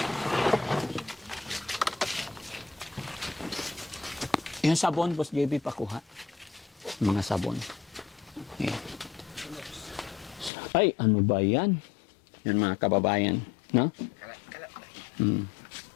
Yung sabon, Boss JB, pakuha. Mga sabon. Ayan. Ay, ano ba yan? Yan mga kababayan. No?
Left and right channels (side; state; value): right; drops out; at 10.5 s